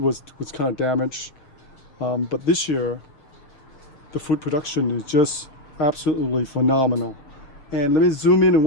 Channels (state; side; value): late; right; 6.6 ms